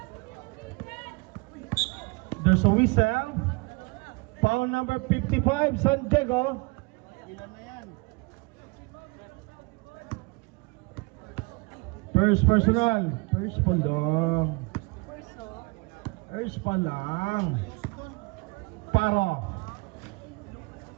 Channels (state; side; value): quieter; left; 27.8 dB